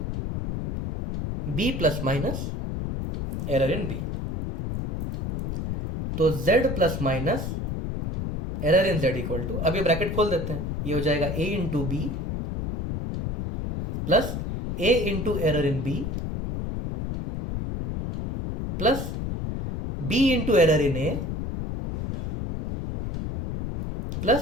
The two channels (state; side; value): noise; left; rumble, 4 dB below the sound